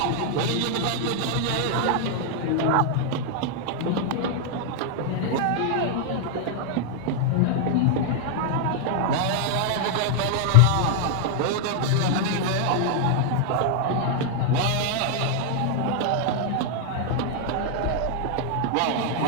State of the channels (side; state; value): both; different; correlation 0.00